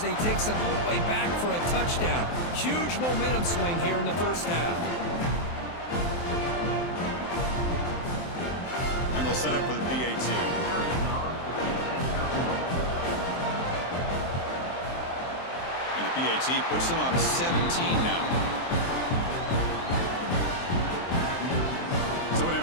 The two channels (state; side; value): late; right; 23 ms